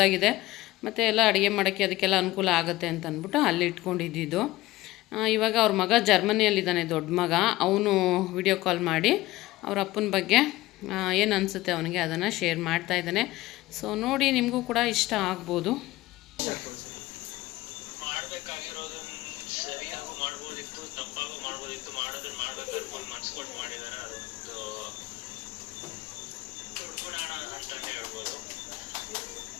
ಮತ್ತು ಎಲ್ಲ ಅಡುಗೆ ಮಾಡೋಕ್ಕೆ ಅದಕ್ಕೆಲ್ಲ ಅನುಕೂಲ ಆಗುತ್ತೆ ಅಂತ ಅಂದ್ಬಿಟ್ಟು ಅಲ್ಲಿ ಇಟ್ಕೊಂಡಿದ್ದು. ಇವಾಗ ಅವ್ರ ಮಗ ಜರ್ಮನಿಯಲ್ಲಿದ್ದಾನೆ, ದೊಡ್ಡ ಮಗ. ಅವನು ವಿಡಿಯೋ ಕಾಲ್ ಮಾಡಿ ಅವ್ರ ಅಪ್ಪನ ಬಗ್ಗೆ ಏನು ಅನಿಸುತ್ತೆ ಅವನಿಗೆ ಅದನ್ನು ಶೇರ್ ಮಾಡ್ತಾ ಇದ್ದಾನೆ. ಸೊ ನೋಡಿ, ನಿಮಗೂ ಕೂಡ ಇಷ್ಟ ಆಗ್ಬೋದು. ಮಾಡಬೇಕಾಗಿರೋದನ್ನ ಸರಿಯಾಗೂ ಮಾಡ್ಬೋದಿತ್ತು, ತಪ್ಪಾಗೂ ಮಾಡ್ಬೋದಿತ್ತು. ಮಾಡೋದನ್ನ ಮಾಡ್ಬೇಕು ಮನ್ಸು ಕೊಟ್ಟು ಮಾಡಿದಾರೆ. ಅದೊಂದು ದೊಡ್ಡ ಗುಣ ಅಂತಾನೆ ಹೇಳ್ಬೋದು.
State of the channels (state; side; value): quieter; right; 18.1 dB